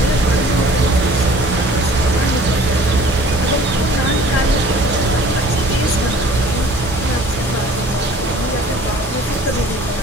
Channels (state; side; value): normal; both; correlation 0.50